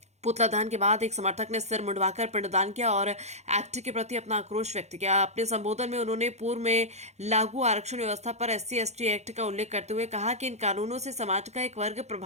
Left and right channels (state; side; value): late; left; 0.32 ms